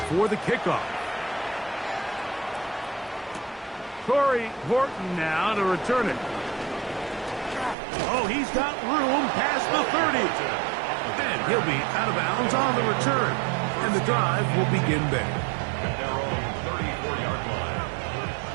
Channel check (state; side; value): drops out; left; at 7.8 s